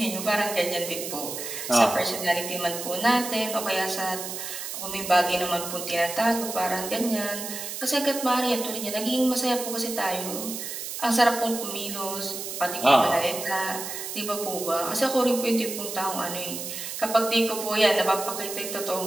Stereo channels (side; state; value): right; noise; hiss, 7 dB below the sound